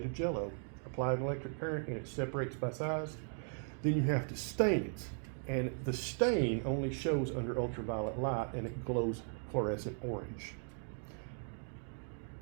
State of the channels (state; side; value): silent; left; 53 dB below the other